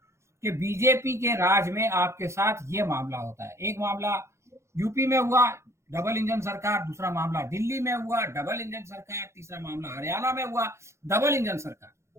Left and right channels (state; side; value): late; left; 0.13 ms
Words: कि बीजेपी के राज में आपके साथ ये मामला होता है। एक मामला यूपी में हुआ, डबल इंजन सरकार, दूसरा मामला दिल्ली में हुआ, डबल इंजन सरकार, तीसरा मामला हरियाणा में हुआ, डबल इंजन